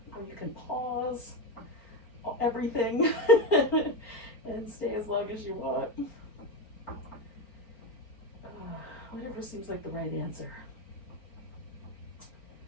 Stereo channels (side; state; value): right; late; 4.4 ms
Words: or you can pause everything and stay as long as you want. Whatever seems like the right answer.